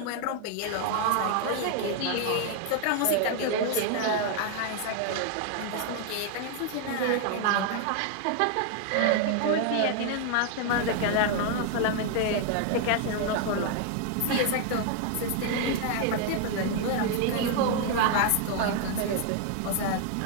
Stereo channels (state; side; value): different; both; correlation 0.00